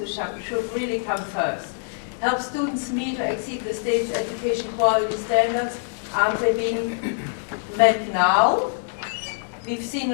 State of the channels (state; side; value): silent; right; 62 dB below the other